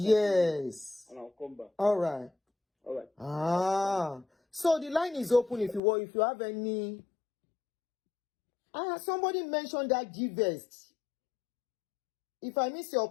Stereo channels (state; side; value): drops out; right; at 5.8 s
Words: And I'll come back. All right. So the line is open if you have any. Somebody mentioned that GVEX. If I miss your